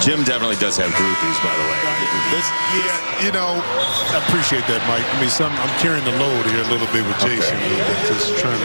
Jim definitely does have groupies, by the way. Yeah, you know, I appreciate that, Mike. I mean, I'm carrying the load here a little bit with Jason. Okay. Just trying to.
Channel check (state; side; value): inverted; both; correlation -1.00